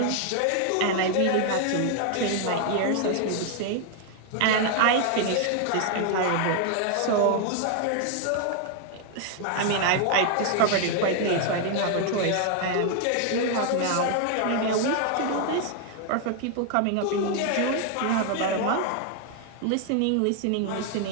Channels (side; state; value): both; different; correlation 0.00